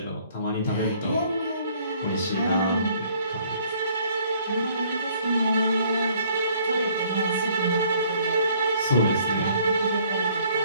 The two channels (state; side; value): inverted; both; correlation -0.61